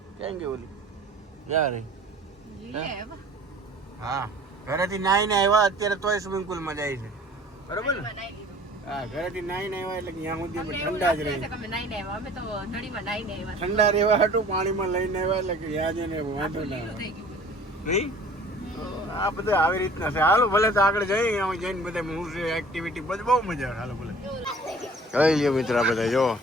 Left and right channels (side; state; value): both; normal; correlation 0.49